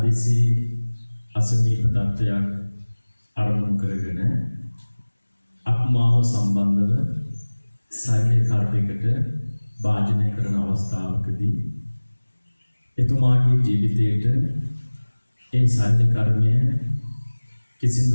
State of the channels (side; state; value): both; inverted; correlation -1.00